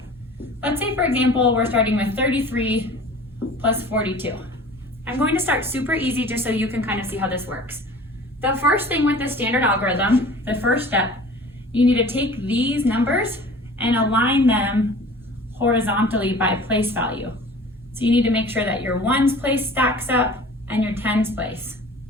let's say for example, we're starting with 33 plus 42. I'm going to start super easy just so you can kind of see how this works. The first thing with the standard algorithm, the first step, you need to take these numbers and align them horizontally by place value. So you need to make sure that your ones place stacks up and your tens place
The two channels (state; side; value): normal; both; correlation 0.44